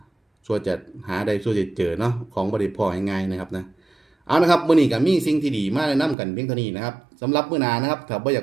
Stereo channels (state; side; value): drops out; left; at 6.2 s